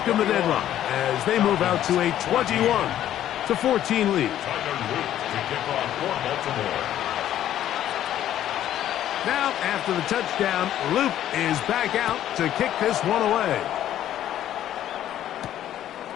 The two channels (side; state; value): right; quieter; 11.8 dB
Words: the deadlock as they move out to a 21-14 lead. Now, after the touchdown, Luke is back out to kick this one away.